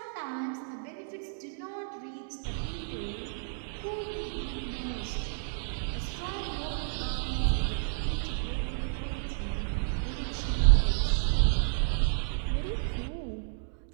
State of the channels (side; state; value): left; silent; digital silence